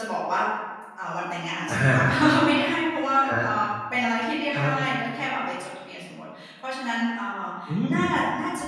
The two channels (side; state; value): both; identical; correlation 1.00